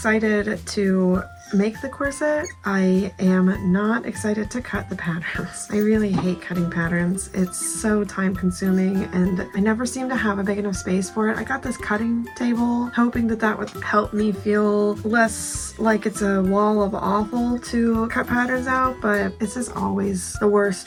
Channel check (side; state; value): both; identical; correlation 1.00